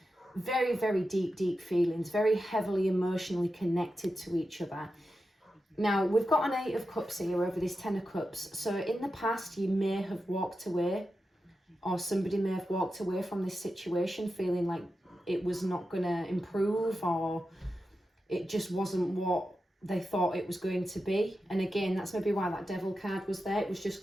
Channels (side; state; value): both; normal; correlation 0.90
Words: very, very deep feelings, very heavily emotionally connected to each other. Now, we've got an Eight of Cups here over this Ten of Cups. So in the past, you may have walked away, or somebody may have walked away from this situation feeling like it was not going to improve, or it just wasn't what they thought it was going to be. And again, that's maybe why that Devil card was there. It was just